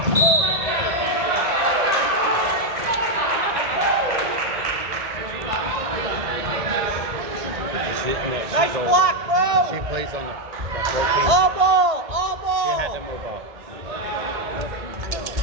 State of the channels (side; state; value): left; late; 1.7 ms